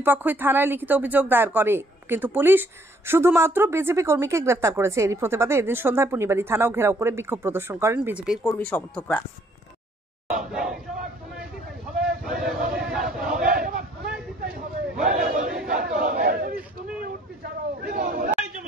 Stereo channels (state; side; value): normal; both; correlation 0.64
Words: পক্ষই থানায় লিখিত অভিযোগ দায়ের করে, কিন্তু পুলিশ শুধুমাত্র বিজেপি কর্মীকে গ্রেফতার করেছে। এরই প্রতিবাদে এদিন সন্ধ্যায় পুনিবাড়ি থানাও ঘেরাও করে বিক্ষোভ প্রদর্শন করেন বিজেপির কর্মী সমর্থকরা।